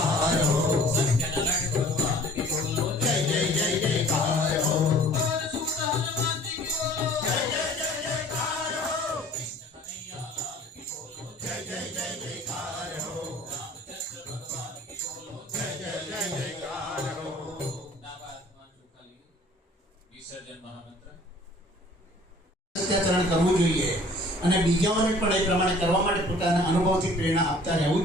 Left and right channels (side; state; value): both; normal; correlation 0.51